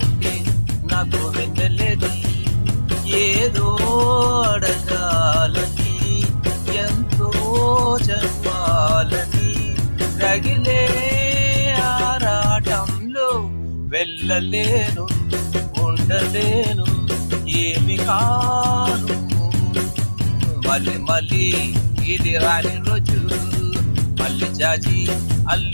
నాకు వెన్నెలేది. ఏదో అడగాలని, ఎంతో చెప్పాలని, రగిలే ఆరాటంలో వెళ్ళలేను, ఉండలేను, ఏమి కాను. మళ్ళీ మళ్ళీ ఇది రాని రోజు, మళ్ళీ జాజి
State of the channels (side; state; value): both; inverted; correlation -1.00